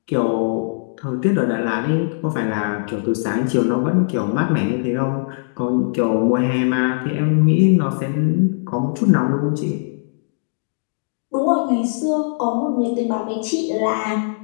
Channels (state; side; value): silent; right; digital silence